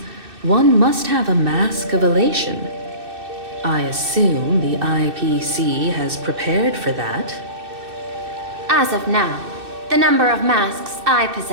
one must have a mask of elation. I assume the IPC has prepared for that. As of now, the number of masks I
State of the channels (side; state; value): left; late; 2.6 ms